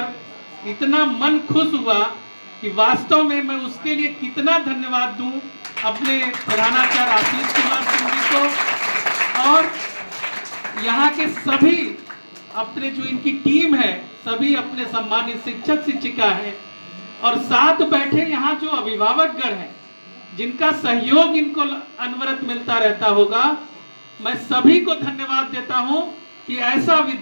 इतना मन खुश हुआ कि वास्तव में मैं उसके लिए कितना धन्यवाद दूं अपने प्रधानाचार्य आशीष कुमार सिंह जी को और यहाँ के सभी अपने जो इनकी टीम है, सभी अपने सम्मानित शिक्षक शिक्षिका हैं और साथ बैठे यहाँ जो अभिभावक गण हैं, जिनका सहयोग इनको अनवरत मिलता रहता होगा। मैं सभी को धन्यवाद देता हूँ कि ऐसा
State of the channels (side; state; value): both; inverted; correlation -1.00